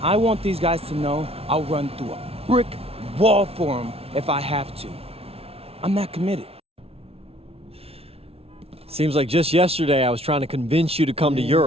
want these guys to know I'll run through a brick wall for them if I have to. I'm that committed. Seems like just yesterday I was trying to convince you to come to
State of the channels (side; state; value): left; late; 0.29 ms